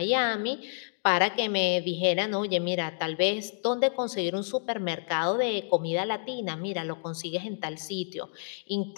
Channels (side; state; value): right; silent; digital silence